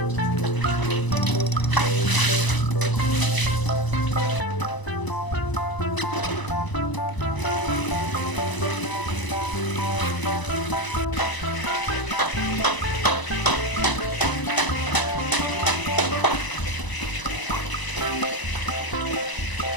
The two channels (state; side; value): late; right; 1.0 ms